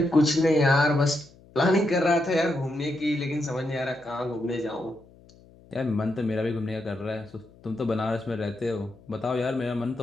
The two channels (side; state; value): left; noise; hum, 25 dB below the sound